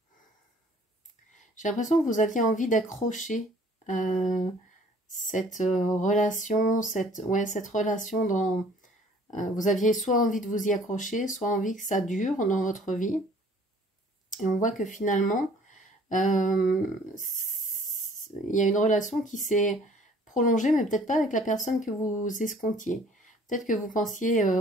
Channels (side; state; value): both; normal; correlation 0.54